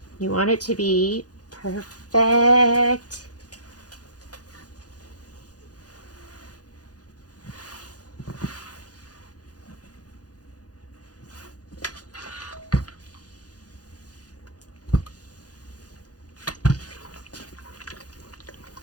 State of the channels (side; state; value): right; late; 0.68 ms